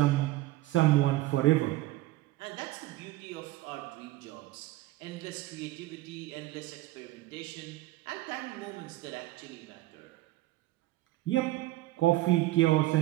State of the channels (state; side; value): quieter; left; 17.3 dB